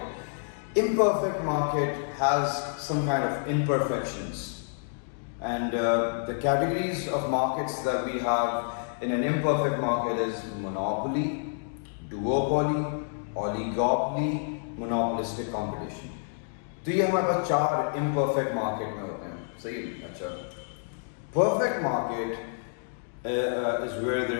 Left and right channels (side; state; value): right; silent; digital silence